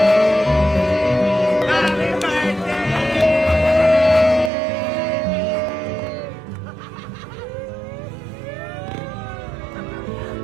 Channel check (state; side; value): drops out; left; at 4.5 s